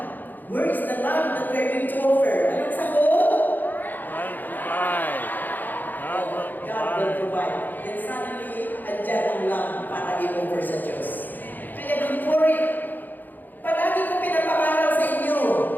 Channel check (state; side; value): late; right; 0.086 ms